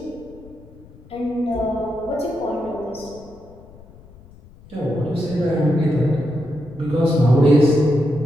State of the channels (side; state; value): left; noise; rumble, 22 dB below the sound